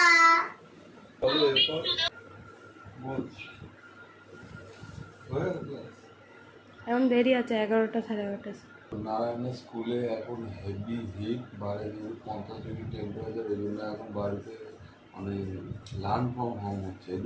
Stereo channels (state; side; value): identical; both; correlation 1.00